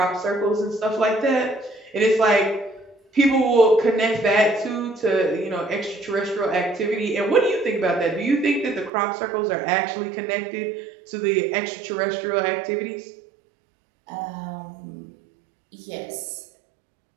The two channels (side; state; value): left; drops out; at 8.9 s